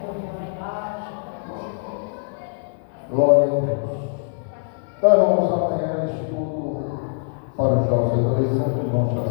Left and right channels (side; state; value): right; silent; digital silence